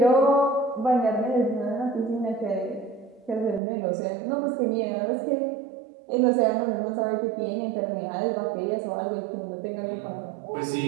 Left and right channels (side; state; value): left; drops out; at 3.6 s